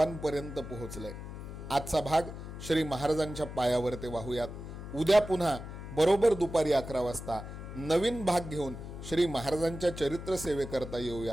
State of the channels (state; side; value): noise; left; hum, 10 dB below the sound